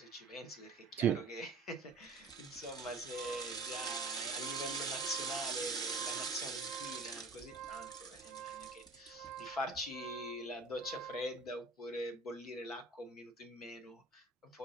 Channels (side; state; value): left; quieter; 3.3 dB